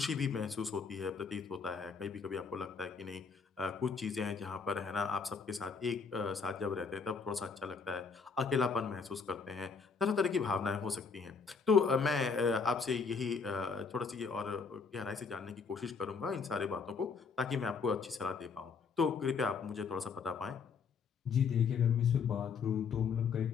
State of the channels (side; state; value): right; quieter; 5.4 dB